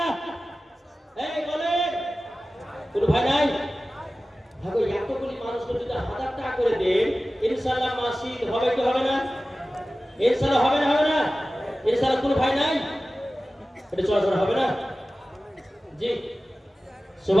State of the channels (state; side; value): normal; both; correlation 0.96